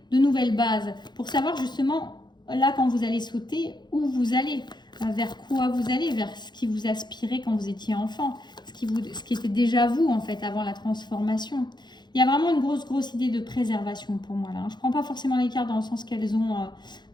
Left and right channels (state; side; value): late; right; 0.21 ms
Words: de nouvelles bases, pour savoir justement, là quand vous allez sauter, où vous allez. Vers quoi vous allez, vers ce qui vous aspirait quand vous étiez enfant, ce qui était déjà vous en fait avant la transformation. Il y a vraiment une grosse idée de préservation pour moi là. Je ne prends pas forcément les cartes dans le sens qu'elles ont,